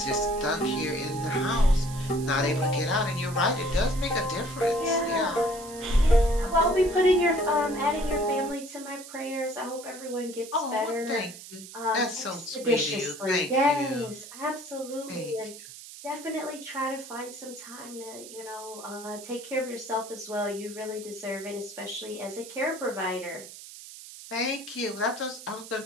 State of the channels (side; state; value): right; noise; hiss, 15 dB below the sound